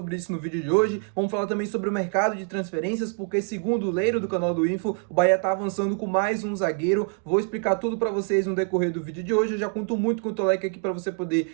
isso no vídeo de hoje. Vamos falar também sobre o mercado de transferências, porque segundo o Leiro do canal do Info, o Bahia está avançando com mais um zagueiro. Vou explicar tudo para vocês no decorrer do vídeo de hoje. Eu já conto muito com o teu like aqui para você poder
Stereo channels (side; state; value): left; quieter; 38.8 dB